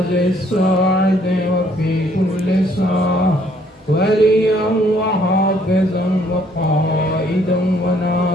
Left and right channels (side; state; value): both; normal; correlation 0.65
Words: الساعة وفي كل ساعة وليا وحافظا وقائدا